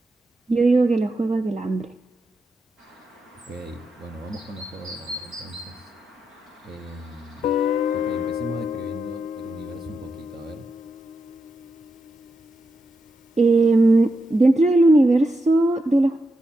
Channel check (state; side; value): normal; both; correlation 0.86